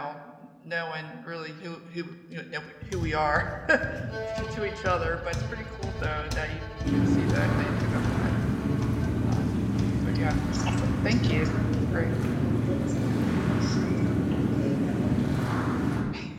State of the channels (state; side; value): identical; both; correlation 1.00